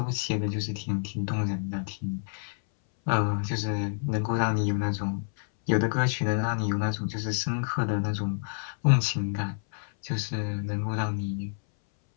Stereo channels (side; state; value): right; silent; 59 dB below the other